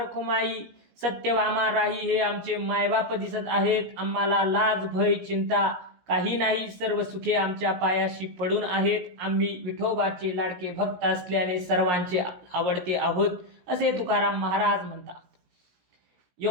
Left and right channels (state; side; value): late; left; 17 ms